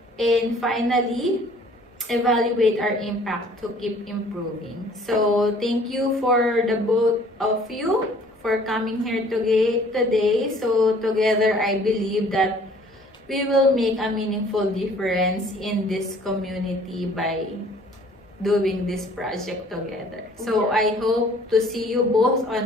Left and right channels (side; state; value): both; normal; correlation 0.55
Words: And finally, evaluate our impact to keep improving. So thank you for the both of you for coming here today. So together, I believe that we will make a meaningful difference in this community by doing this project together. So I hope to see you both